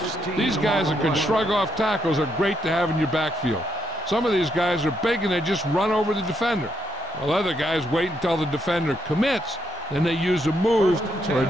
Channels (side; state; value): both; normal; correlation 0.77